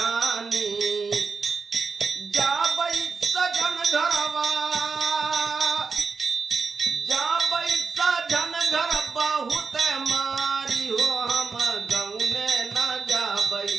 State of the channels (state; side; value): quieter; left; 4.8 dB